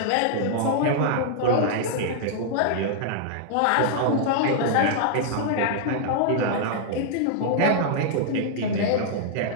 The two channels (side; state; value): both; different; correlation -0.01